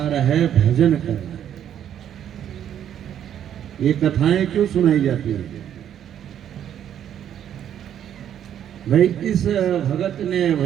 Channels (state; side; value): quieter; left; 10.0 dB